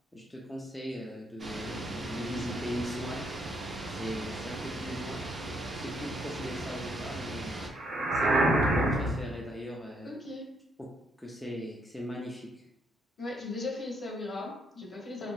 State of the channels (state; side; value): normal; both; correlation 0.73